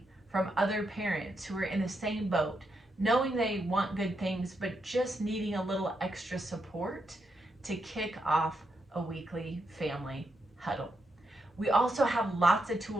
from other parents who are in the same boat, knowing they want good things, but just needing a little extra support to kick off a weekly family huddle. We also have lots of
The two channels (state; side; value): normal; both; correlation 0.82